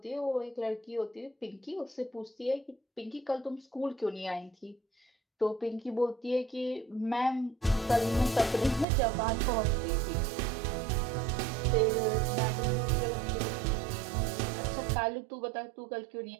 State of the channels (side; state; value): left; drops out; at 8.8 s